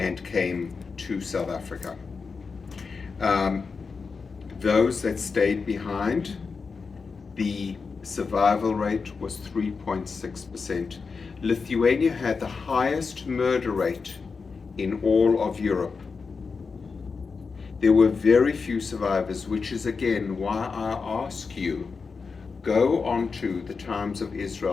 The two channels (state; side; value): quieter; right; 4.9 dB